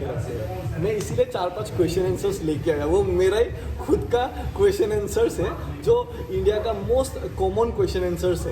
रखते हैं। मैं इसीलिए 4-5 क्वेश्चन आंसर्स लेके आया, वो मेरा ही खुद का क्वेश्चन आंसर्स है जो इंडिया का मोस्ट कॉमन क्वेश्चन आंसर्स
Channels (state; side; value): identical; both; correlation 1.00